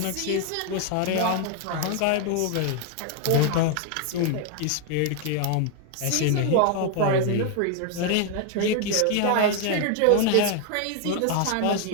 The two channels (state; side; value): different; both; correlation 0.00